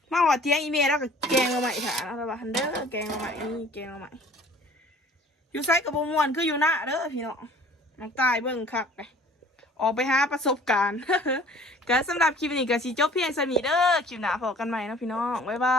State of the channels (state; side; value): normal; both; correlation 0.51